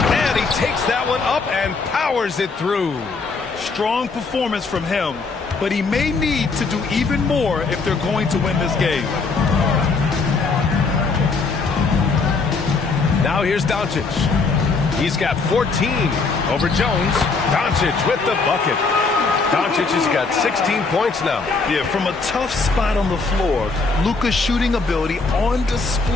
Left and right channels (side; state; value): right; quieter; 4.3 dB